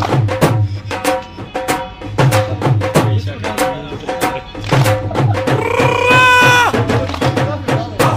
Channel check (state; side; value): identical; both; correlation 1.00